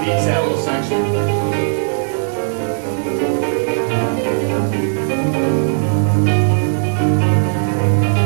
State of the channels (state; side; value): silent; left; 59 dB below the other